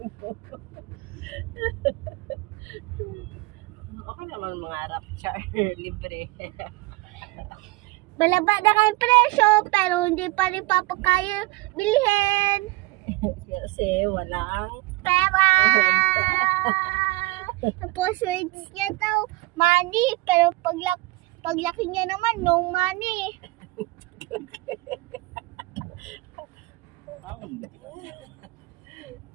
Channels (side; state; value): left; quieter; 22.3 dB